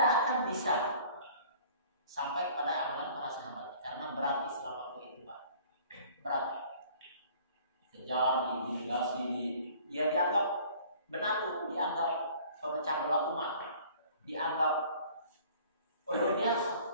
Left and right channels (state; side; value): inverted; both; correlation -0.51